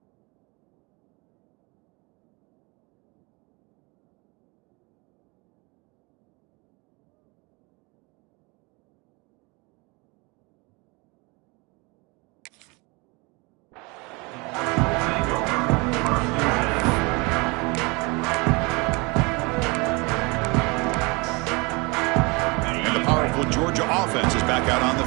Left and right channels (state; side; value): quieter; left; 27.5 dB